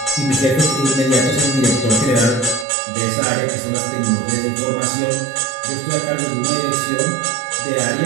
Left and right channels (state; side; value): drops out; left; at 2.7 s